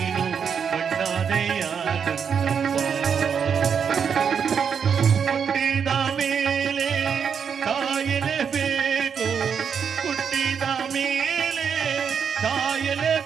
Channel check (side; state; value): left; quieter; 7.0 dB